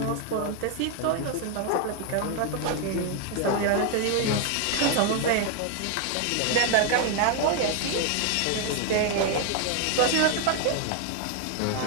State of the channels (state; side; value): different; both; correlation 0.01